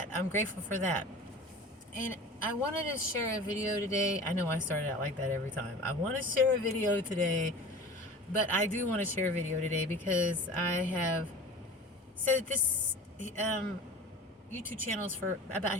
I'm grateful for that. And I wanted to share a video today. I know I started out like that every time. I want to share a video today, but I do want to share a video today because I have said that this YouTube channel is for about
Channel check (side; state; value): both; normal; correlation 0.38